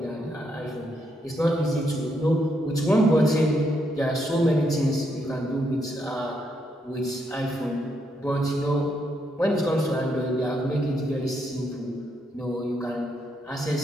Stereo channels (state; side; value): normal; both; correlation 0.78